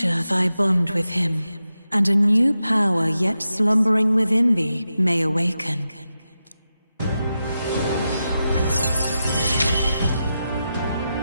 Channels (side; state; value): both; inverted; correlation -0.89